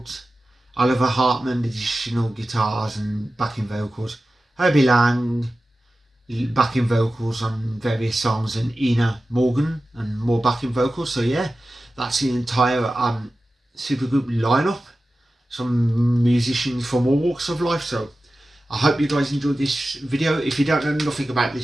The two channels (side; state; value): both; normal; correlation 0.94